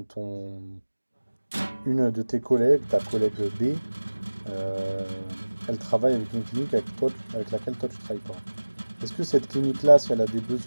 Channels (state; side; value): inverted; both; correlation -1.00